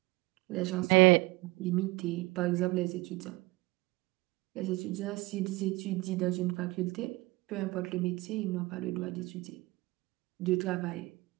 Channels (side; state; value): left; quieter; 22.7 dB